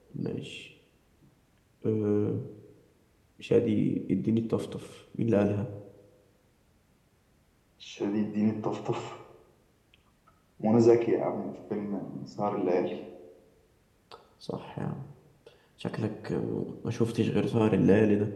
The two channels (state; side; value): identical; both; correlation 1.00